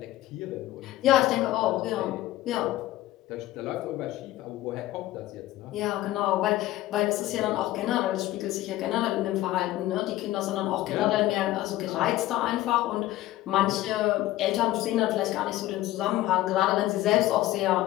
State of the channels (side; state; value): right; quieter; 15.7 dB